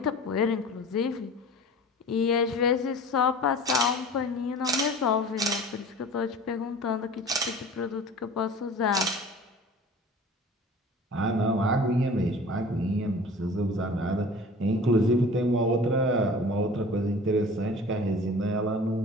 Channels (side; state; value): both; normal; correlation 0.42